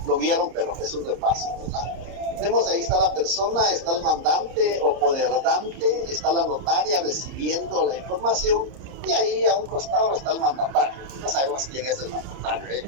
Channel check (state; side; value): late; left; 30 ms